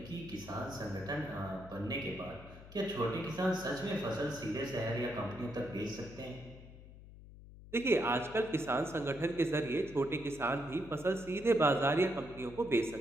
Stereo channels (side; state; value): left; noise; hum, 17 dB below the sound